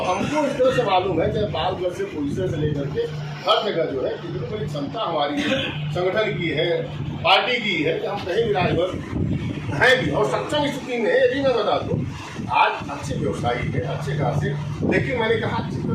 हमको इस तरह से मालूम है, चाहे पालगढ़ से पुलिस से लेकर के हर जगह जो है कितनी बड़ी क्षमता हमारी संगठन की है, पार्टी की है, कि हम कहीं भी राजभर है भी और सक्षम स्थिति में है। ये भी मैं बता दूँ, आज अच्छे व्यवसायी है, अच्छे खासे, लेकिन मैंने कहा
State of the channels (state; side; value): identical; both; correlation 1.00